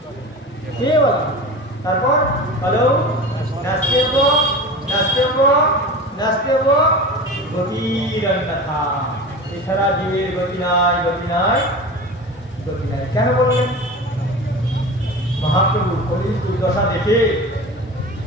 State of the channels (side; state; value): both; normal; correlation 0.32